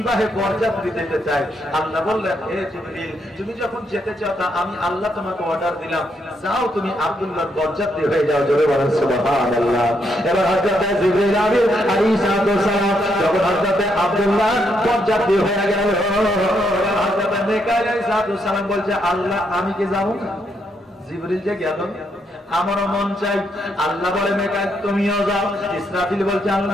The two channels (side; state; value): both; normal; correlation 0.77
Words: বরযাত্রী যেতে চাই। আল্লাহ বললেন, হে জিবরিল, তুমি যখন যেতে চাও তা আমি আল্লাহ তোমাকে অর্ডার দিলাম, যাও তুমি আব্দুল্লাহর বরযাত্রী হয়ে যাও। জোরে বলেন সুবহানাল্লাহ। এবার হযরত জিবরিল আলাইহিস সালাম যখন হযরত আব্দুল্লাহ বরযাত্রী হয়ে গেল, হযরত মিকাইল আলাইহিস সালাম বলছে, আল্লাহ, আমি কি যাব না? জিবরিল যে গেল, আমারও মন চাই। আল্লাহ বলে, মিকাইল তুমিও যাও। ইসরাফিল বলছে,